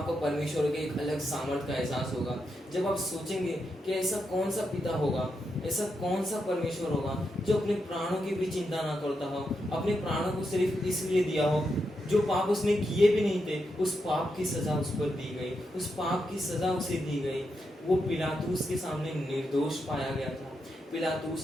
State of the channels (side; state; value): both; normal; correlation 0.84